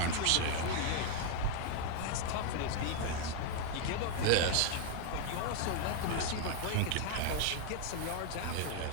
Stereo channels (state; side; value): different; both; correlation 0.00